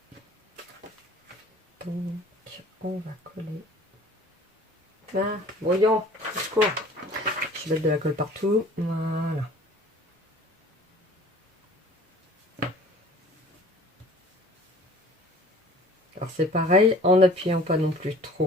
Donc, on va coller. Ah, voyons, secours. Je vais mettre de la colle partout. Voilà. Alors c'est pareil, en n'appuyant pas non plus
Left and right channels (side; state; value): both; normal; correlation 0.49